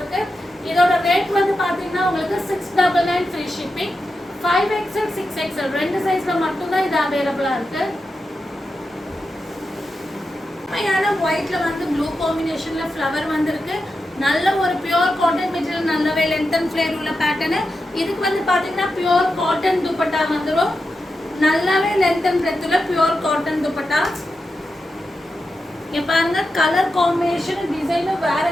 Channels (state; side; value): normal; both; correlation 0.89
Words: இதோட ரேட் வந்து பாத்தீங்கன்னா உங்களுக்கு 699 ஃப்ரீ ஷிப்பிங். 5XL 6XL ரெண்டு சைஸ்ல மட்டும் தான் இது அவேலபிளா இருக்கு. ஒயிட்ல வந்து ப்ளூ காம்பினேஷன்ல ஃப்ளவர் வந்திருக்கு. நல்ல ஒரு பியூர் காட்டன் மெட்டீரியல், நல்லாவே லென்த் அண்ட் ஃப்ளேர் உள்ள பேட்டர்ன். இதுக்கு வந்து பாத்தீங்கன்னா பியூர் காட்டன் துப்பட்டா வந்துரும். நல்லாவே லென்த் அண்ட் பிரெத் உள்ள பியூர் காட்டன் துப்பட்டா. இங்க பாருங்க கலர் காம்பினேஷன் டிசைனும் வேற